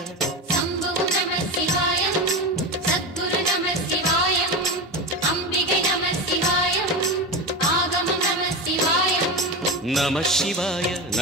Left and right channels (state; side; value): normal; both; correlation 0.21